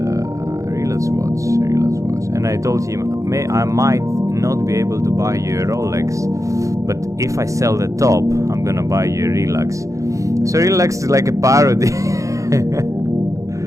relax watch. And I told him, I might not be able to buy you a Rolex, but if I sell the top, I'm gonna buy you a relax. So relax is like a parody.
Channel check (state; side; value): late; left; 0.15 ms